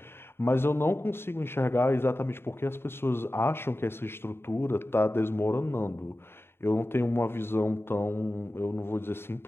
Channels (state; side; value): late; right; 0.11 ms